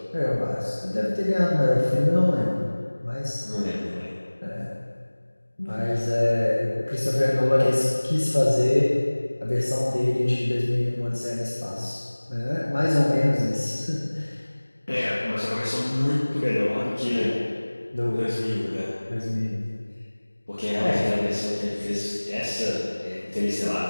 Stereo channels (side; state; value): both; inverted; correlation -1.00